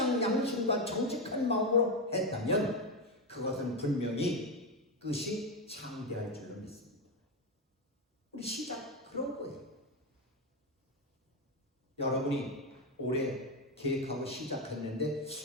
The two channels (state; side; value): normal; both; correlation 0.11